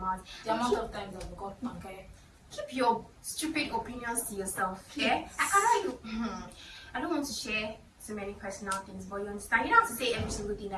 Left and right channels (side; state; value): both; identical; correlation 1.00